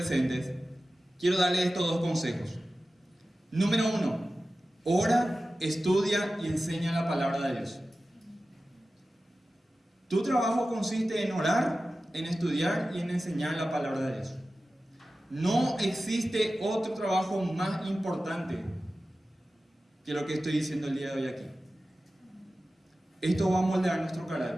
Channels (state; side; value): normal; both; correlation 0.95